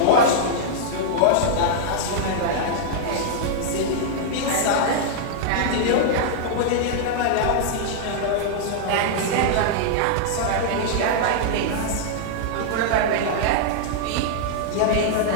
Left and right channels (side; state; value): both; different; correlation -0.01